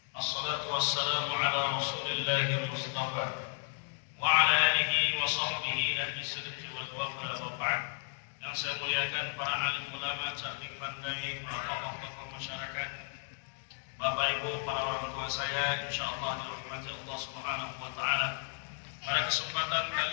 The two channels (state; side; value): silent; right; 55 dB below the other